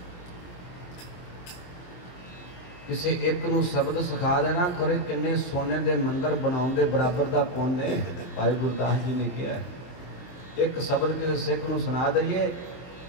किसी एक नूं शब्द सिखा देना खरे किन्ने सोने दे मंदिर बनाउण दे बराबर दा पुण्य भाई गुरदास जी ने कहा। एक शब्द किसी सिख नूं सुना दईए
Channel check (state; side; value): late; right; 23 ms